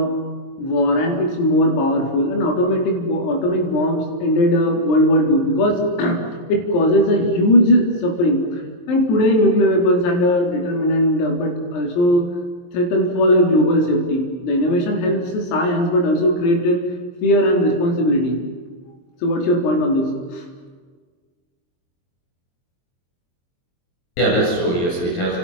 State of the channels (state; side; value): late; right; 23 ms